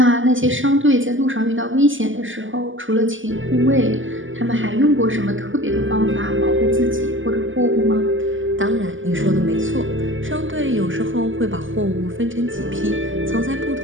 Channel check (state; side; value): late; left; 0.57 ms